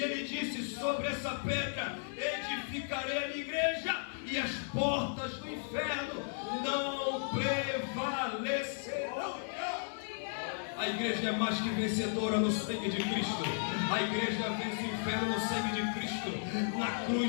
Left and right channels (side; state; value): right; silent; 55 dB below the other